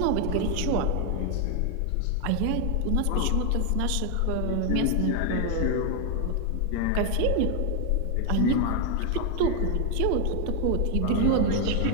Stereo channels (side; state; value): both; different; correlation 0.00